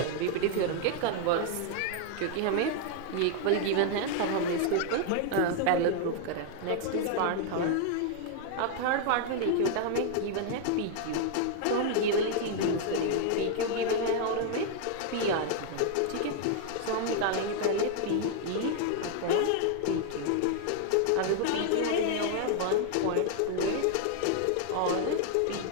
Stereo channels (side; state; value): both; different; correlation 0.00